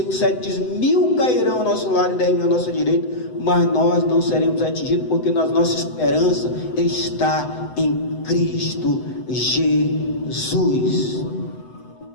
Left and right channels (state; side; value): late; right; 7.9 ms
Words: 7 diz: 1000 cairão ao nosso lado e 10.000 à nossa direita, mas nós não seremos atingidos, porque nossa esperança está em Cristo Jesus.